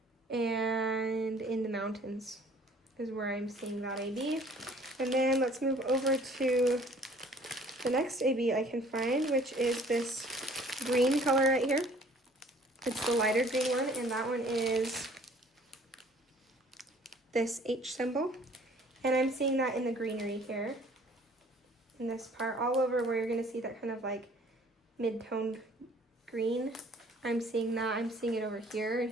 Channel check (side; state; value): both; normal; correlation 0.55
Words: And in the mountains is where I'm seeing that AB. And then let's move over to the next AB I can find, which is this green color right here. It's the lighter green one, and that one is this H symbol. And I'm seeing that in the greenery here, in this part, all over where you're gonna see that kind of like mid-toned green. I'm seeing that. I'm seeing it over here and